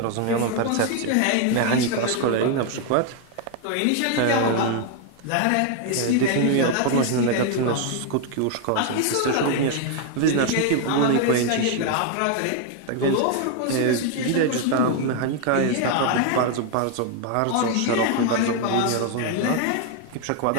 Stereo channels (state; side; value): different; both; correlation 0.01